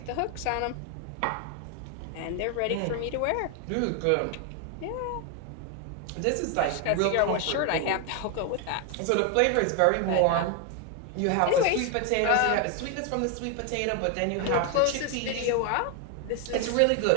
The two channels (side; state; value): both; different; correlation 0.01